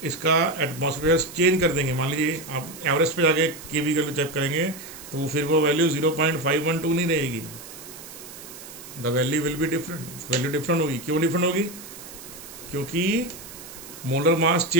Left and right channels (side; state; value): right; noise; hiss, 15 dB below the sound